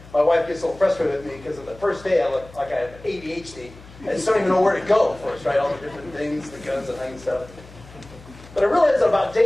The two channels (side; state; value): left; noise; hum, 20 dB below the sound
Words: My wife gets a little frustrated with me because on the first day I look like I have ADHD. I just don't even know where to go first, right? All the different things, the guns and things stuff. But I realized that about